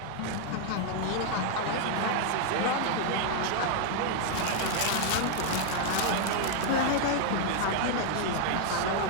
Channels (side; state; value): both; different; correlation 0.00